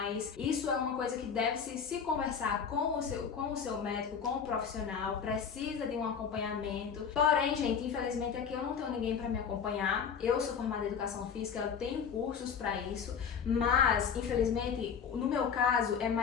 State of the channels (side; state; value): right; quieter; 6.8 dB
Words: isso é uma coisa que deve se conversar com o seu médico, com o profissional, precisa de um acompanhamento. Porém, gente, infelizmente aqui eu não tenho ninguém para me acompanhar. Eu sou formada em educação física, eu tenho cursos para isso, mas infelizmente no meu caso é